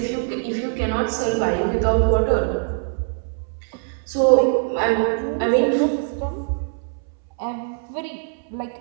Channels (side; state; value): left; silent; 64 dB below the other